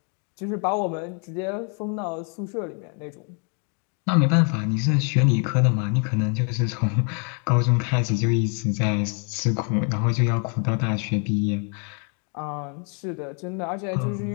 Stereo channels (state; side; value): quieter; right; 38.7 dB